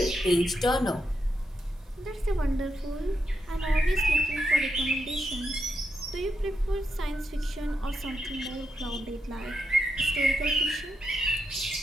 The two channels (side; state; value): both; normal; correlation 0.83